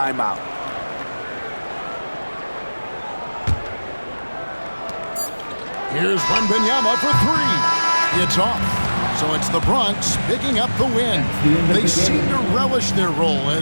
Here's Wembanyama for 3. It's off. So it's the Bronx picking up the win. They seem to relish their role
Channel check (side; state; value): both; inverted; correlation -1.00